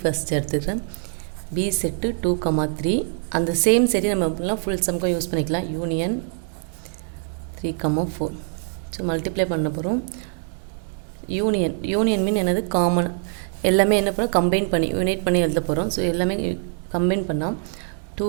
first எடுத்துக்கிறேன். B set 2 3. அந்த சேம் சரி நம்ம எப்படிலாம் ஃபுல் சம்க்கும் யூஸ் பண்ணிக்கலாம். யூனியன் 3 4. ஸோ மல்டிப்ளை பண்ண போகிறோம். யூனியன் மீன் என்னது, காமன். எல்லாமே என்ன பண்ணோம், கம்பைன் பண்ணி யூனைட் பண்ணி எழுத போகிறோம். ஸோ எல்லாமே கம்பைன் பண்ணால் 2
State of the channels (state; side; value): silent; left; 63 dB below the other